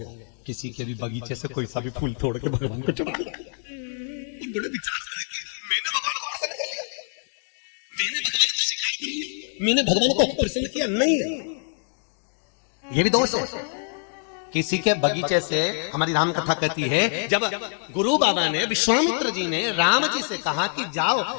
किसी के भी बगीचे से कोई सा भी फूल तोड़ के भगवान को चढ़ा दिया। बड़े विचार करके मैंने भगवान को प्रसन्न कर लिया, मैंने भगवान को प्रसन्न किया। नहीं, ये भी दोष है। किसी के बगीचे से, हमारी राम कथा कहती है, जब गुरु बाबा ने, विश्वामित्र जी ने राम जी से कहा कि जाओ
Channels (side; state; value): right; silent; 59 dB below the other